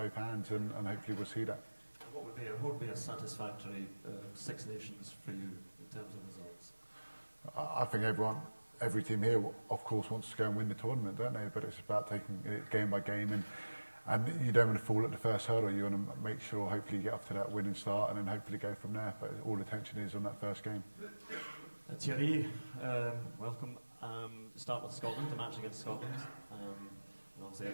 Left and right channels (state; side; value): inverted; both; correlation -1.00